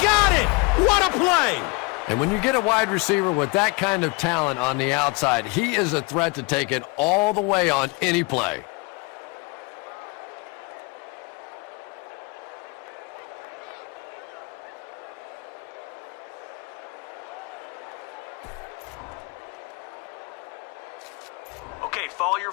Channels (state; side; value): quieter; right; 27.4 dB